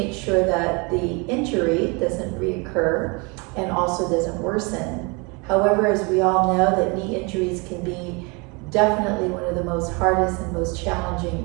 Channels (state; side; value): quieter; left; 29.8 dB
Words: sure that the injury doesn't reoccur and also doesn't worsen. However, as we all know, that knee injuries can be definitely one of the most hardest and most